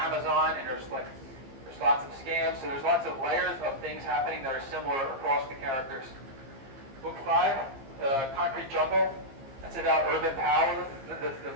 and there's lots of scams, so there's lots of layers of things happening that are similar across the characters. Book 5, Concrete Jungle, that's about urban power. The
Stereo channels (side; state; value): left; late; 15 ms